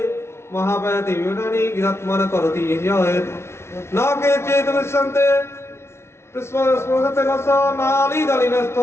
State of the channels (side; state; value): right; late; 0.13 ms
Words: महापयति विनानि गीतात्मन करोति यत् न केचित् विश्यन्ते स्मरते न स